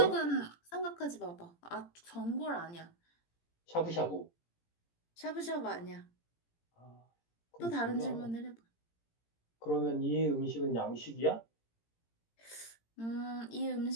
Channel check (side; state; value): right; late; 17 ms